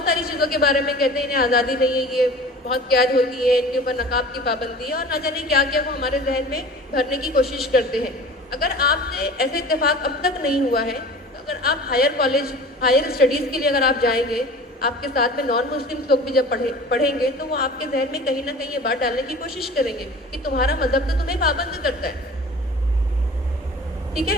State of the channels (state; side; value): normal; both; correlation 0.42